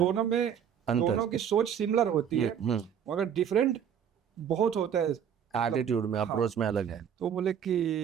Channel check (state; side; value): quieter; left; 8.5 dB